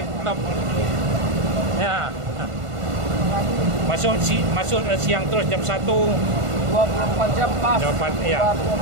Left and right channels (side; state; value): left; late; 1.5 ms